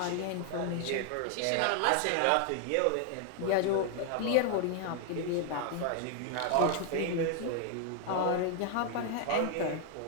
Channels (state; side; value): different; both; correlation 0.00